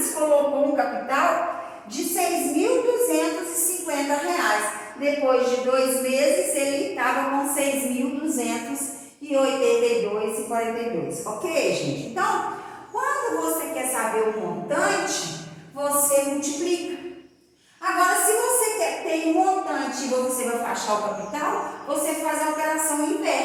colocou um capital de R$6.250. Depois de 2 meses, ele estava com 6.282,42. Ok, gente? Então, quando você quer saber o montante, você multiplica. Agora, se você tem um montante e você vai achar o capital, você faz a operação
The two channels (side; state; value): both; identical; correlation 1.00